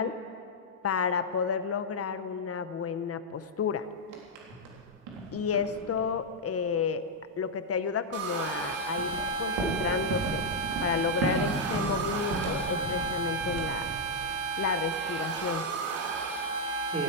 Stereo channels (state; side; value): normal; both; correlation -0.03